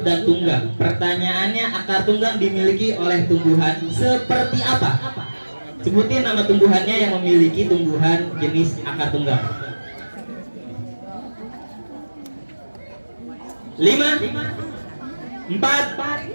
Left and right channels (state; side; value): inverted; both; correlation -1.00